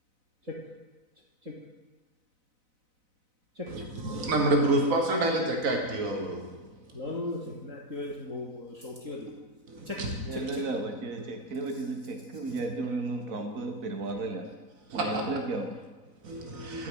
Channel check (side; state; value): left; late; 4.0 ms